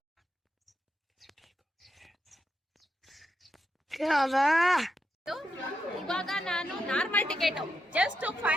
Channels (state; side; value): normal; both; correlation 0.84